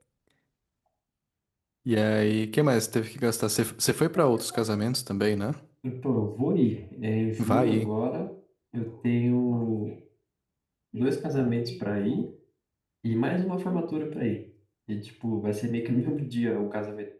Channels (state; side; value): identical; both; correlation 1.00